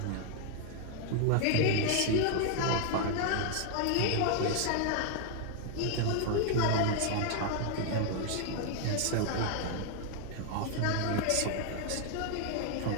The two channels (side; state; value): both; different; correlation 0.00